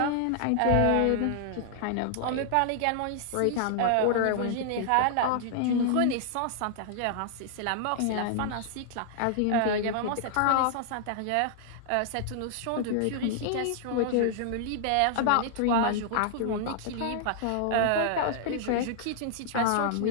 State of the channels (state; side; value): different; both; correlation -0.01